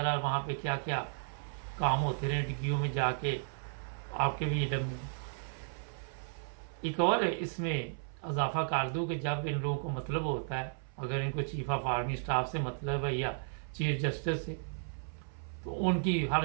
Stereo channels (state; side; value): silent; left; 55 dB below the other